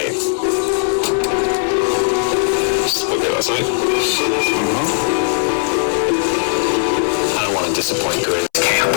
Okay, last night? I don't want to disappoint Grizz. Camp,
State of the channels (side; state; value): right; silent; 66 dB below the other